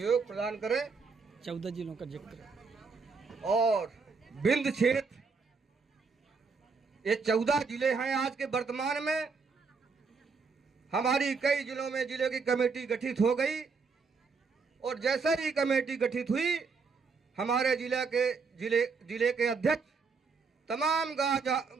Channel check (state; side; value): quieter; left; 4.9 dB